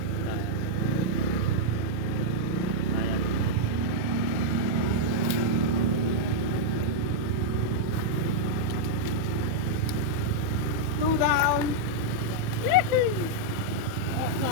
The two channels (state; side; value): late; left; 28 ms